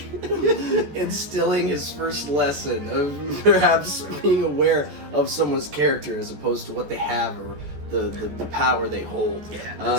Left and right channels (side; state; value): left; late; 14 ms